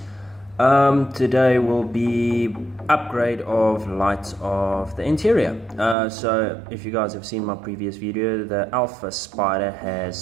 Today will be upgrade of lights of the interior. So if you guys have seen my previous video, the Alfa Spider has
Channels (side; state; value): left; drops out; at 6.0 s